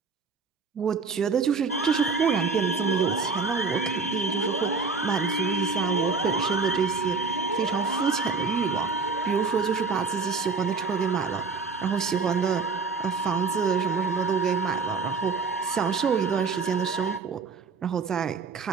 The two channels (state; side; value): quieter; left; 4.6 dB